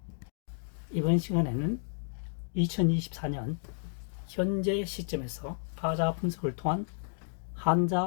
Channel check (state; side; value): silent; right; 57 dB below the other